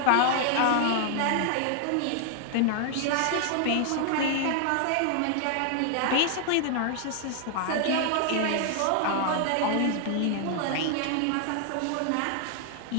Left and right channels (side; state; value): both; different; correlation 0.00